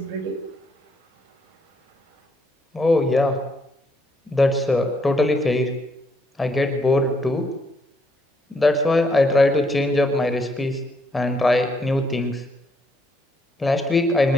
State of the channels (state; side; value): normal; both; correlation 0.73